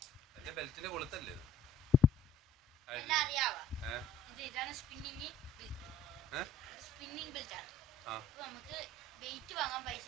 എന്റെ ബെൽറ്റിന്റെ കൊളുത്തല്ലേ ഇത്? സ്പിന്നിങ് ബെൽറ്റ് ആണ്. അപ്പൊ നമുക്ക് വെയിറ്റ് വാങ്ങാൻ പൈസ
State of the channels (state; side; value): normal; both; correlation 0.55